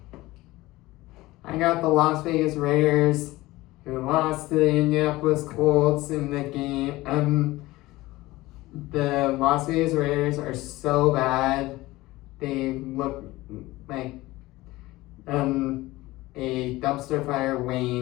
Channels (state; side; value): quieter; right; 18.8 dB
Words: I got the Las Vegas Raiders, who lost to the Indianapolis Colts in the game. The Las Vegas Raiders are so bad. They look like a dumpster fire